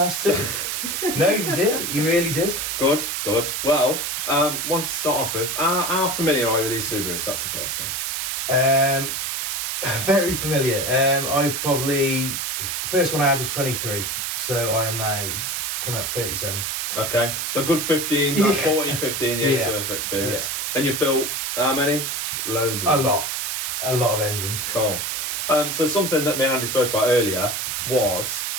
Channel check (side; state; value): right; noise; hiss, 2 dB below the sound